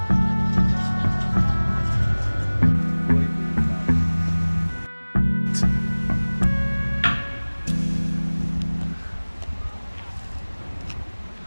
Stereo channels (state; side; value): inverted; both; correlation -1.00